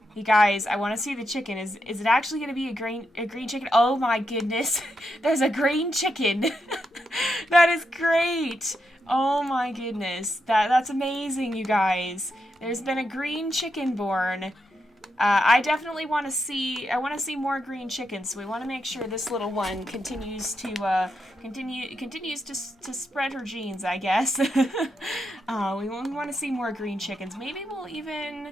You guys, I want to see the chicken. Is it actually going to be a green chicken? Oh my goodness. There's a green chicken. That is great. Oh my goodness. That's amazing, you guys. There's been a green chicken born. I definitely want to see, more green chickens, so we want to make sure this little one continues to, to spread her genes, I guess. We want to see more green chickens. Maybe we'll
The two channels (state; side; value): normal; both; correlation 0.84